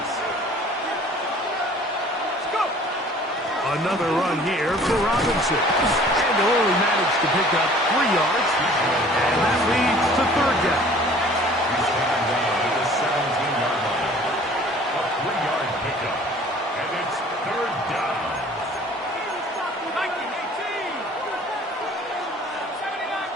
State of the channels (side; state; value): both; normal; correlation 0.51